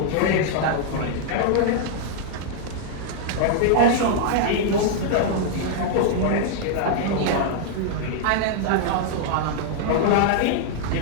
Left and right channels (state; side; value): different; both; correlation -0.01